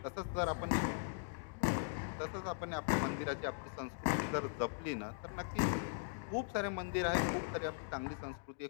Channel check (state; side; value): silent; right; digital silence